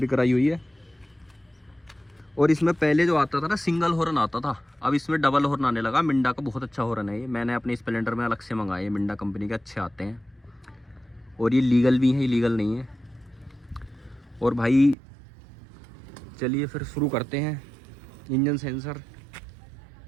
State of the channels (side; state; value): left; drops out; at 15.0 s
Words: कराई हुई है। और इसमें पहले जो आता था ना सिंगल हॉर्न आता था, अब इसमें डबल हॉर्न आने लगा। मिंडा का बहुत अच्छा हॉर्न है ये, मैंने अपने स्प्लेंडर में अलग से मंगाए, मिंडा कंपनी के अच्छे आते हैं, और ये लीगल भी है, इलीगल नहीं है। और भाई चलिए फिर शुरू करते हैं। इंजन सेंसर